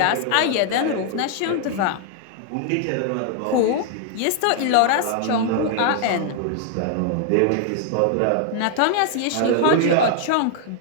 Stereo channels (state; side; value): different; both; correlation 0.00